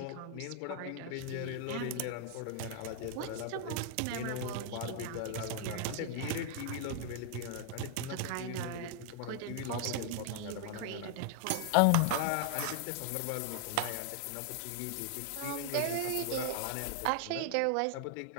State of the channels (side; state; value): both; different; correlation 0.00